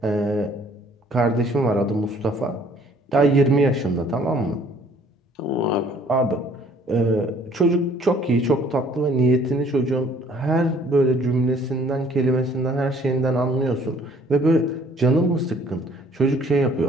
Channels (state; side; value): normal; both; correlation 0.58